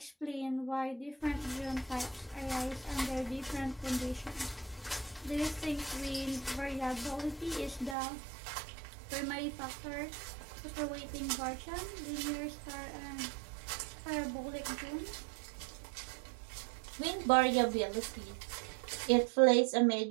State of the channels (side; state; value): left; drops out; at 8.0 s